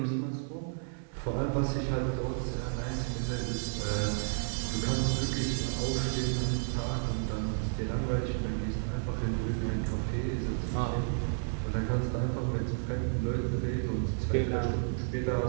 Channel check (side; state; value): left; silent; 57 dB below the other